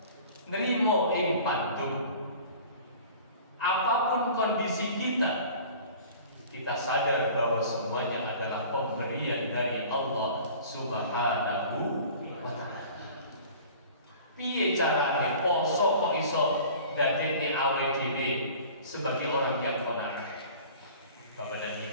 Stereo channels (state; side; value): inverted; both; correlation -0.44